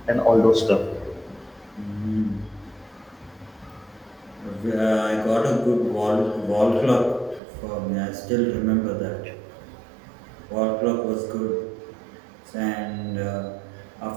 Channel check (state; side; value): drops out; left; at 7.4 s